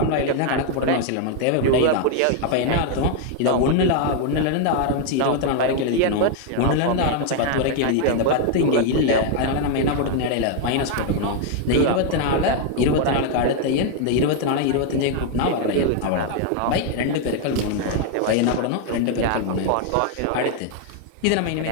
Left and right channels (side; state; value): both; different; correlation 0.00